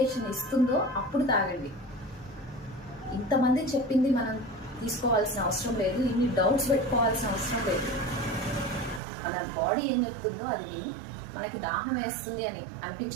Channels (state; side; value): drops out; left; at 9.0 s